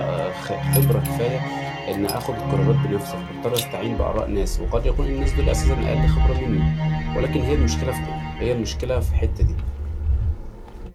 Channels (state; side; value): identical; both; correlation 1.00